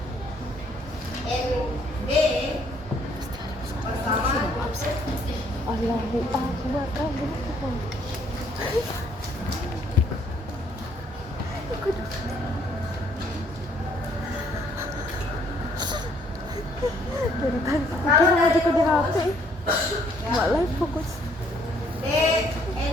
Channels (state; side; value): normal; both; correlation 0.65